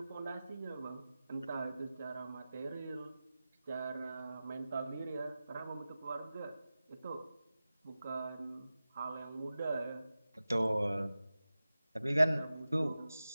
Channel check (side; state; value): both; inverted; correlation -0.95